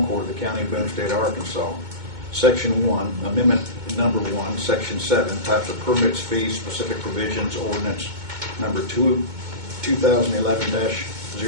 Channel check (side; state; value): left; late; 2.2 ms